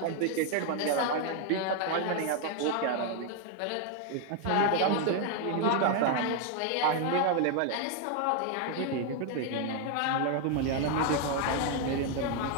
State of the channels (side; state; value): both; different; correlation 0.00